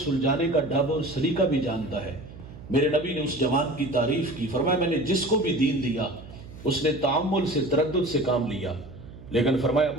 سلجھانے کا ڈھب اور سلیقہ بھی جانتا ہے۔ میرے نبی نے اس جوان کی تعریف کی، فرمایا میں نے جس کو بھی دین دیا اس نے تعامل سے، تردد سے کام لیا، لیکن فرمایا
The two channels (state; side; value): noise; right; hum, 16 dB below the sound